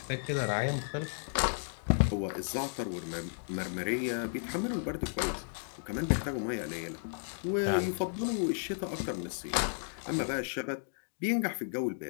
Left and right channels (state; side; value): silent; right; digital silence